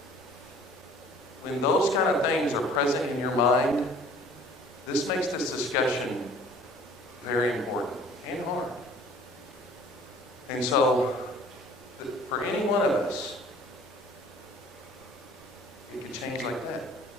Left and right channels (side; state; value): both; normal; correlation 0.51